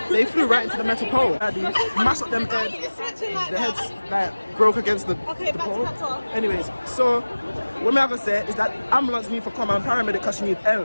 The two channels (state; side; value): inverted; both; correlation -1.00